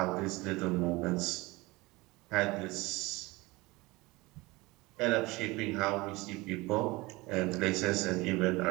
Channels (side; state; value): left; quieter; 22.3 dB